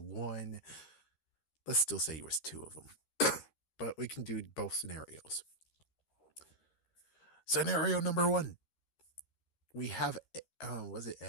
Let's still say it was two of them, but we can do both scenarios. Scenario number one: we have, was it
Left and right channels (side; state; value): right; late; 13 ms